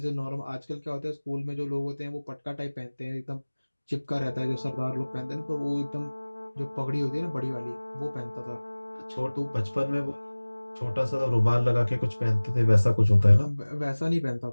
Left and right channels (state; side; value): inverted; both; correlation -1.00